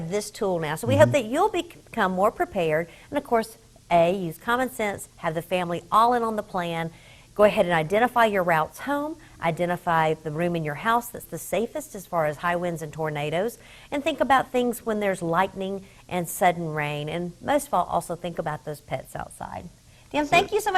this tool now. So we hope that you'll become more prepared. And, of course, use common sense, have the family all in on the plan. Go ahead and identify your routes home, identify the room in your house that's the safest as far as high winds and tornadoes, and think about things when there's lightning and sudden rain, and most of all, also think about those pets outside. Dan, thank you so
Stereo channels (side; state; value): both; identical; correlation 1.00